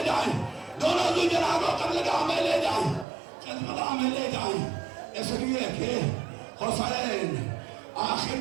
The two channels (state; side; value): drops out; left; at 3.1 s